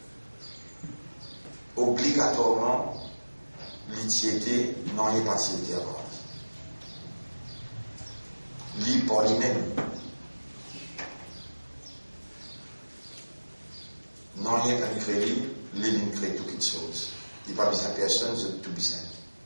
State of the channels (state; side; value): inverted; both; correlation -1.00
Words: Obligatoirement, l'utilité n'en est pas s'il avant. Lui par lui-même. Non, il n'y a qu'un crédit, il crée toute chose. Il n'y a pas besoin de personne, c'est tout besoin.